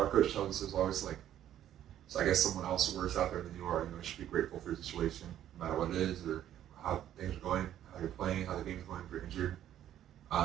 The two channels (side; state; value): left; quieter; 11.4 dB